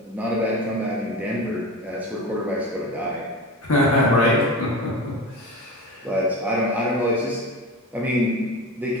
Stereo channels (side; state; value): both; normal; correlation 0.28